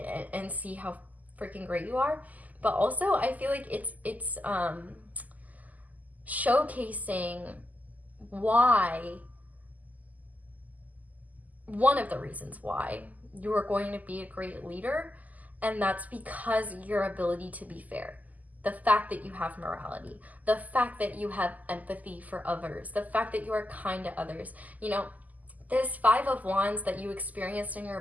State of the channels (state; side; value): late; left; 0.079 ms